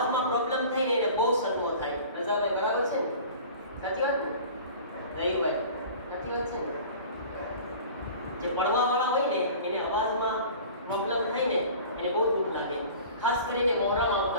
પ્રોબ્લેમ થાય ને, એને બહુ સદમો થાય. રઝાભાઈ બરાબર છે ને? સાચી વાત ને? રહીભાઈ સાચી વાત છે ને? જે પડવા વાળા હોય ને, એને અવાજમાં પ્રોબ્લેમ થાય ને, એને બહુ દુઃખ લાગે. ખાસ કરીને મોહરમ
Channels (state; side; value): inverted; both; correlation -0.42